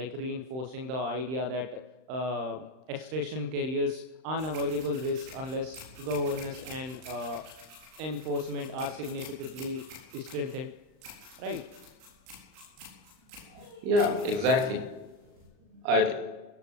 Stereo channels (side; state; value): left; late; 39 ms